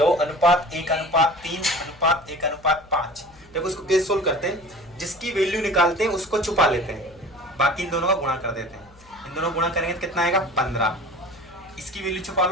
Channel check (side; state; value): left; noise; hum, 26 dB below the sound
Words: अनुपात 1:3 अनुपात 1:5। देखो इसको कैसे सोल्व करते हैं, जिसकी वैल्यू निकालते हैं उसको छुपा लेते हैं, बाकी इन दोनों का गुणा कर देते हैं। इन दोनों गुणा करेंगे तो कितना आएगा? 15। इसकी वैल्यू छुपा